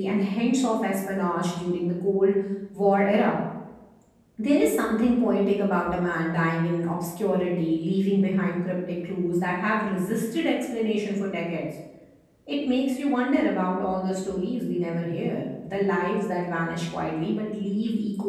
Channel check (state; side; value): identical; both; correlation 1.00